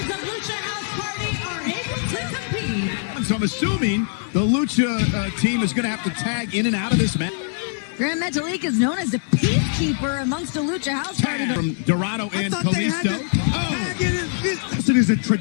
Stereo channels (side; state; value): right; silent; 64 dB below the other